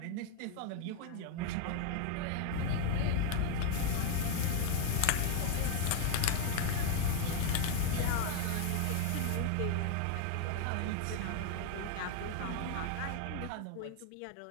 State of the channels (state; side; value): different; both; correlation 0.00